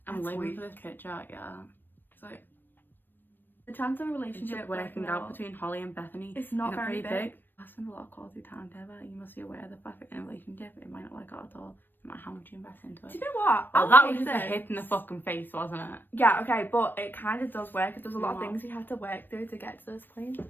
I'm That's living weak. for this picture, yeah. So the chance of a relationship Working out between Holly and Bethany. it's not Isn't it very pretty big. I spend a lot of quality time together. You must be aware of the fact that in a relationship it might not work out at all. No matter how much you invest into Do it. you know what? Well, I'll that was take just a this. hit in the fucking face, wasn't it? Yeah, okay, but it kind of does work. There's a lot of What? things we had to work through to get to this point.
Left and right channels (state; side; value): late; right; 0.094 ms